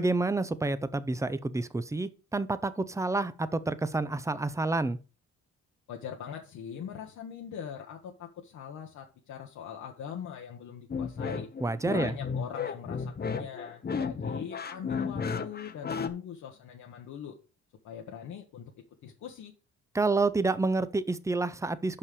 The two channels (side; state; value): both; normal; correlation 0.69